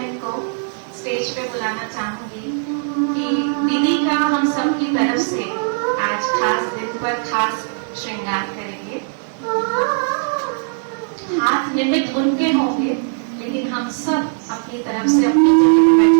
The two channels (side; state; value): left; silent; 66 dB below the other